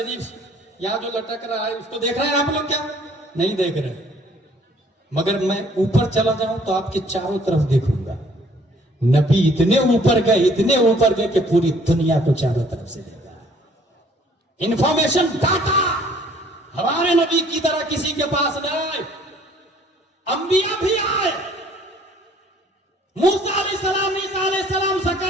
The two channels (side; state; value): both; normal; correlation 0.58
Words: یہاں جو لٹک رہا ہے اس کو دیکھ رہے ہیں آپ لوگ کیا؟ نہیں دیکھ رہے. مگر میں اوپر چلا جاؤں تو آپ کے چاروں طرف دیکھوں گا. نبی اتنے اوپر گئے کہ پوری دنیا کو چاروں طرف سے دیکھا. انفارمیشن ڈاٹا ہمارے نبی کی طرح کسی کے پاس نہ آئے. انبیاء بھی آئے, موسیٰ علیہ السلام, عیسیٰ علیہ السلام,